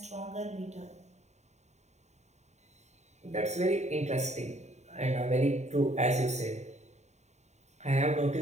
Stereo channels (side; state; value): left; late; 0.33 ms